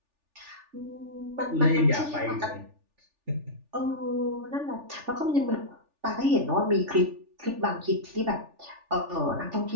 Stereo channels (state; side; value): late; left; 3.4 ms